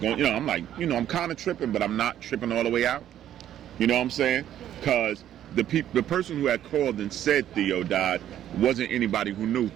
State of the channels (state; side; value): quieter; left; 11.2 dB